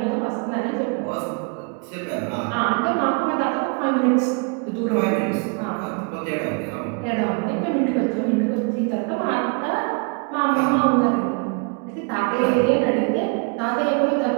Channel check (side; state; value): left; quieter; 35.4 dB